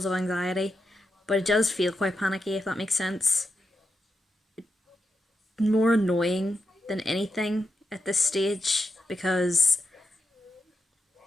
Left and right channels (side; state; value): both; normal; correlation 0.87